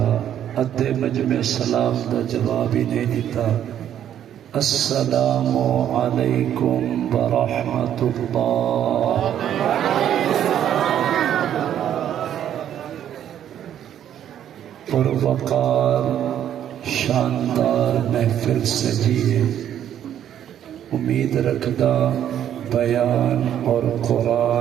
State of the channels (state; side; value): quieter; left; 10.4 dB